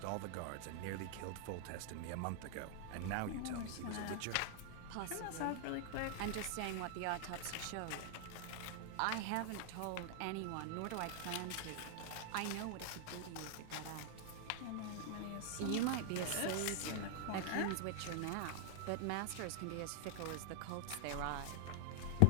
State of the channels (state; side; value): different; both; correlation -0.01